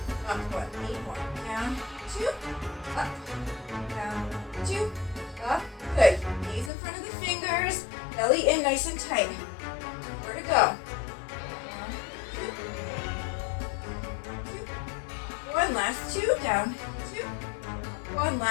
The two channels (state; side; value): drops out; right; at 6.7 s